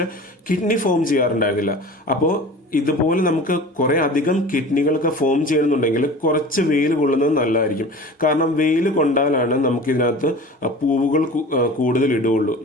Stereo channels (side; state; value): both; normal; correlation 0.38